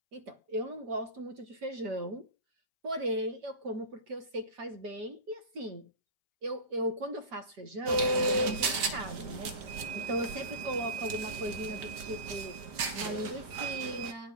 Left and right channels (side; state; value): left; late; 5.1 ms